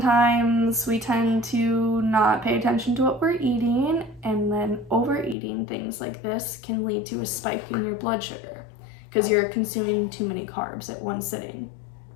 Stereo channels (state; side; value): drops out; right; at 5.4 s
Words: we tend to not pay attention to what we're eating, and then overeating things like this can lead to a spike in your blood sugar because you're consuming too many carbs at one sitting.